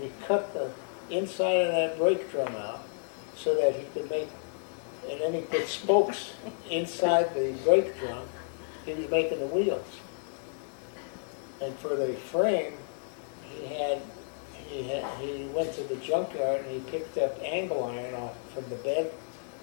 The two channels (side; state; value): right; silent; digital silence